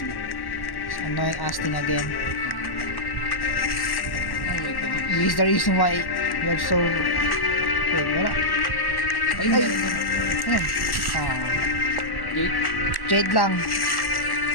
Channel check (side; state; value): right; late; 1.1 ms